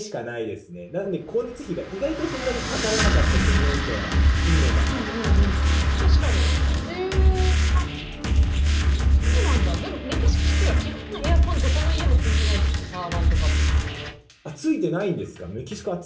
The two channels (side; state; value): both; identical; correlation 1.00